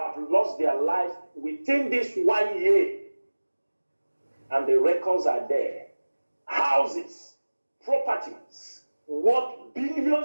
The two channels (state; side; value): inverted; both; correlation -1.00